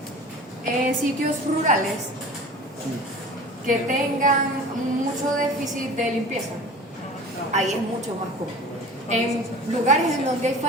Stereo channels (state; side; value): normal; both; correlation 0.39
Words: En sitios rurales que tengan mucho déficit de limpieza. Ahí es mucho más común. En lugares en donde hay